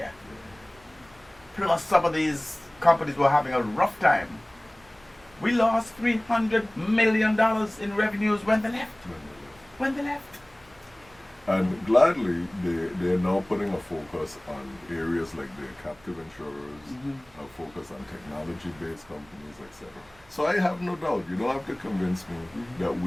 plus some of these companies were having a rough time, we lost $300 million in revenues when they left. And gladly, they're now putting a focus on areas like their captive insurers, a focus on technology-based companies, etc. So I have no doubt. You don't have to convince me that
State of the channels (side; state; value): right; noise; rumble, 28 dB below the sound